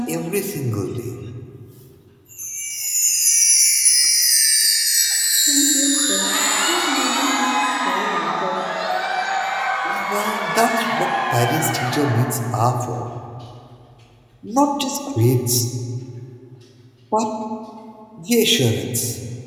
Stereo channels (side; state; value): both; identical; correlation 1.00